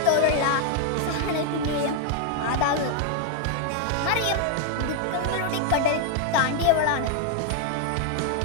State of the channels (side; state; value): both; different; correlation 0.00